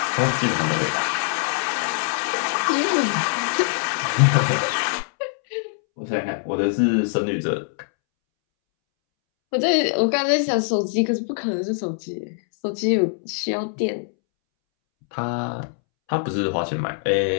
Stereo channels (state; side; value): silent; right; 64 dB below the other